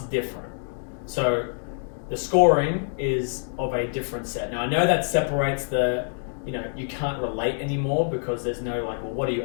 different. So the scoring is of a different set. Now I know that separates you can't relate anymore because there's no like, well, what do you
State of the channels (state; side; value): silent; right; digital silence